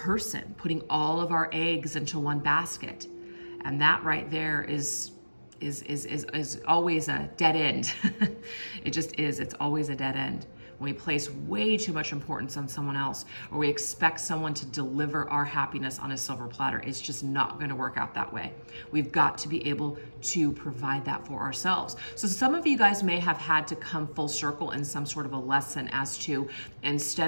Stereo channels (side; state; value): both; inverted; correlation -1.00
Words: putting all of our eggs into one basket. And that right there is always a dead end. It just is. It's always a dead end. When we place way too much importance on someone else, or we expect someone to deliver our happiness on a silver platter, it's just not going to work out that way. We've got to be able to provide that for ourselves. So some of you guys may have had to come full circle in some sort of a lesson as to,